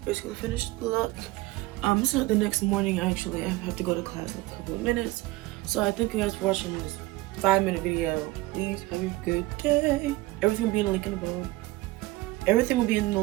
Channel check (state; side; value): quieter; left; 19.7 dB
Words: finished the look. It's not the next morning actually. I have to go to class in a couple of minutes. So I thank you guys for watching this 5-minute video. Please have a good day. Everything will be in the link in the below. Everything will be in the